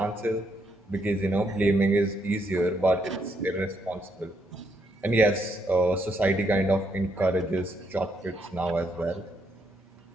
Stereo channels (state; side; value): normal; both; correlation 0.76